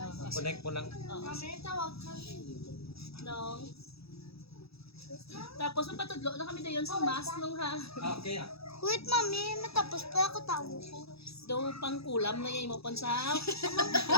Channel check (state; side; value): late; right; 0.77 ms